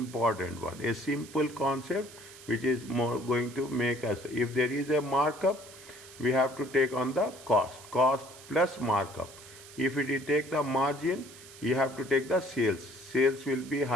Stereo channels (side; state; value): right; noise; hiss, 18 dB below the sound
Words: one. A simple concept which is more going to make us, if there is a markup, we have to take on the cost plus markup. If we take the margin, you have to take the sales. Sales will be